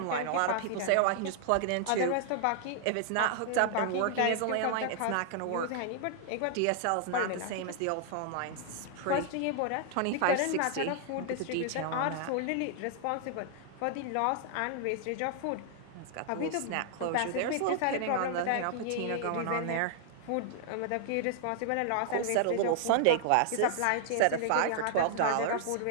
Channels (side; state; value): both; different; correlation -0.01